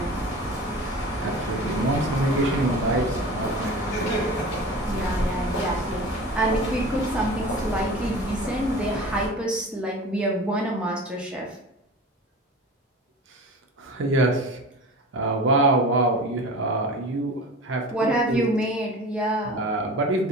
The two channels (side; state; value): both; normal; correlation 0.36